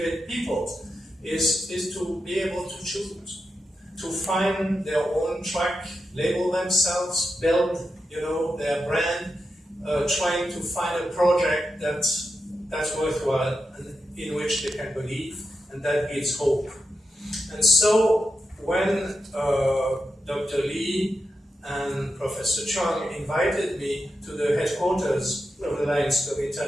people is to be able to choose, to find their own track, label themselves, build, you know, their brand, trying to find a project that's worthwhile and in which they can believe, and that gives hope. And so when Dr. Lee and Professor Chung invited me to the headquarters of the Lions Club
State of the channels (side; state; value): both; normal; correlation 0.88